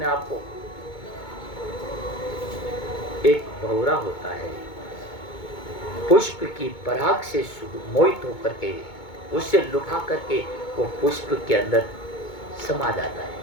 आप को। एक भंवरा होता है, पुष्प की पराग से मोहित होकर के उससे लुभा करके वो पुष्प के अंदर समा जाता है।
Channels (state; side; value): late; right; 2.2 ms